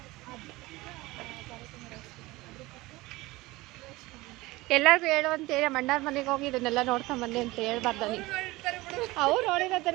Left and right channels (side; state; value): left; quieter; 20.4 dB